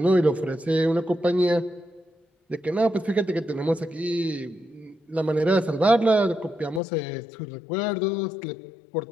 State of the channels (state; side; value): drops out; right; at 6.8 s